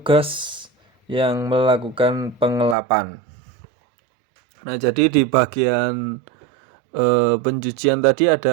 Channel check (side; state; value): left; drops out; at 2.8 s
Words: yang melakukan pengelapan. Nah, jadi di bagian pencucian tadi